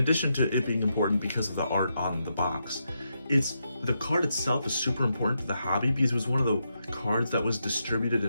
to it being important because of the art on the box, the card itself is super important to the hobby because it was one of the cards that was distributed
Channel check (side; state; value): both; inverted; correlation -0.83